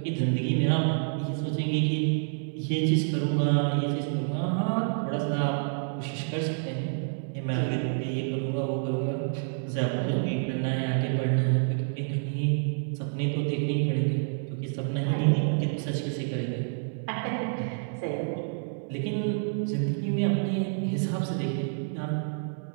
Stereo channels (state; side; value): silent; left; 59 dB below the other